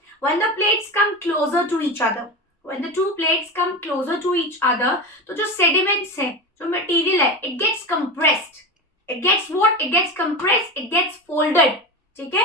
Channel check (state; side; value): normal; both; correlation 0.23